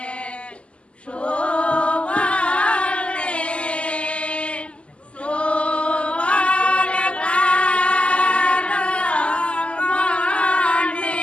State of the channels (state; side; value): late; right; 0.056 ms